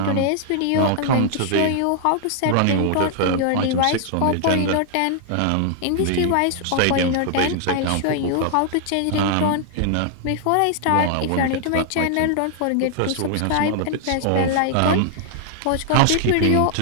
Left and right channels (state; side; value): different; both; correlation 0.00